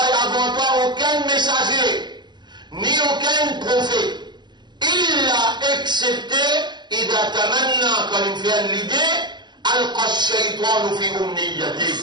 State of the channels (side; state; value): left; late; 0.21 ms